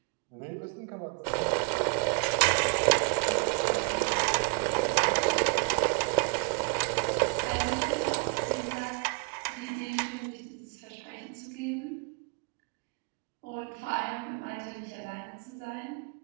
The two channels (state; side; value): quieter; left; 38.5 dB